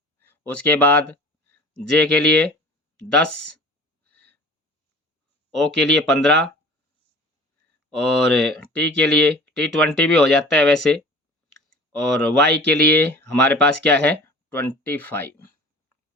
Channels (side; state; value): both; normal; correlation 0.44